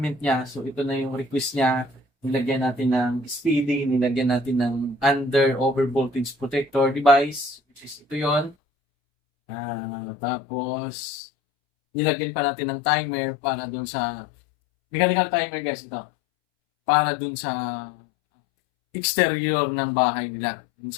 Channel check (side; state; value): right; drops out; at 8.6 s